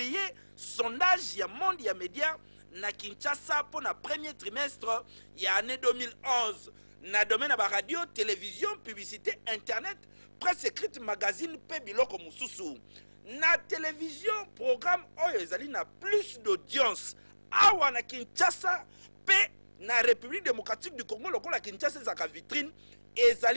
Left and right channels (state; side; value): inverted; both; correlation -1.00